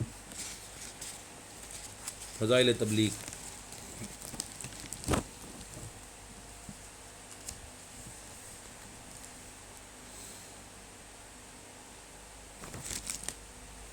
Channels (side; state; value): both; identical; correlation 1.00